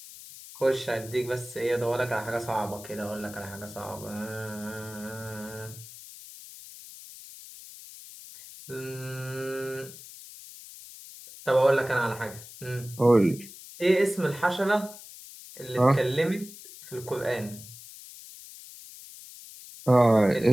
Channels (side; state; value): left; noise; hiss, 16 dB below the sound